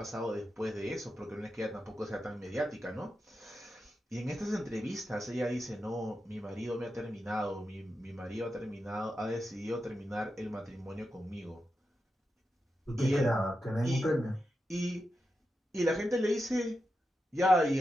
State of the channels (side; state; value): both; normal; correlation 0.89